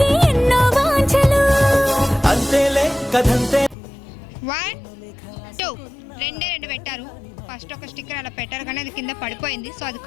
ఎన్నో వాంఛలు. అంతేలే కథంతే. 1 2 2 పెట్టారు. ఫస్ట్ ఒక స్టిక్కర్ అలా పెట్టారు కానీ అది కింద పడిపోయింది, సో అది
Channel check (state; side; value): drops out; right; at 3.8 s